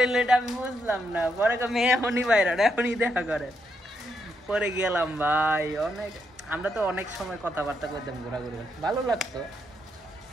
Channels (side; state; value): both; normal; correlation 0.79